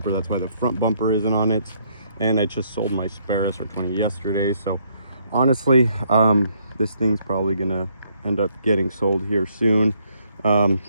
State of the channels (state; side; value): inverted; both; correlation -0.70